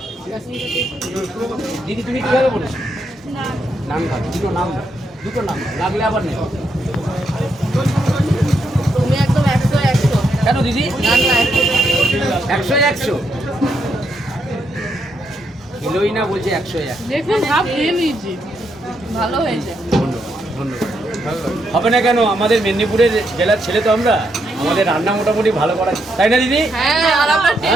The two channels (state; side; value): normal; both; correlation 0.79